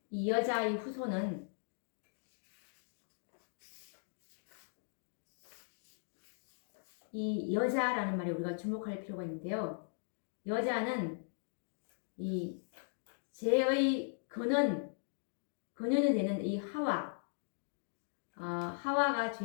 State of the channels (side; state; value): right; silent; digital silence